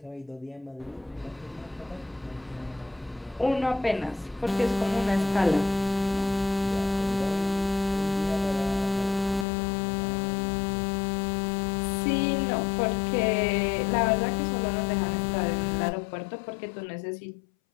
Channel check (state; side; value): drops out; right; at 9.5 s